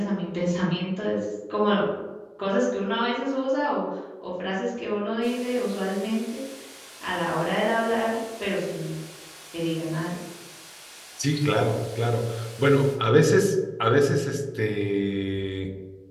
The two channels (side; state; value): both; identical; correlation 1.00